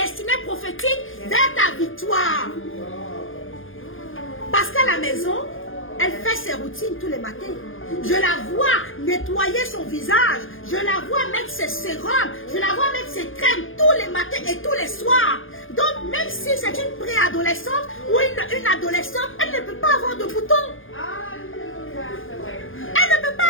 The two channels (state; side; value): late; right; 0.59 ms